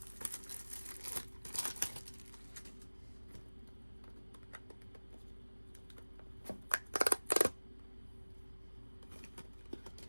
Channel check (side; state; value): both; inverted; correlation -1.00